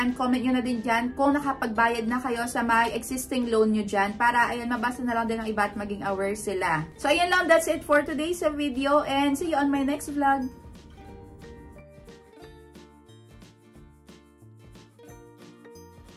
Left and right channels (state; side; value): identical; both; correlation 1.00